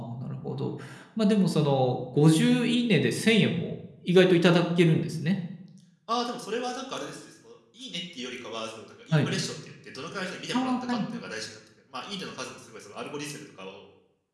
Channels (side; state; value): both; identical; correlation 1.00